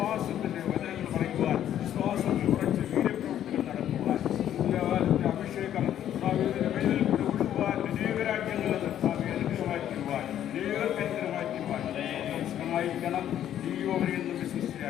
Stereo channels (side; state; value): right; quieter; 10.9 dB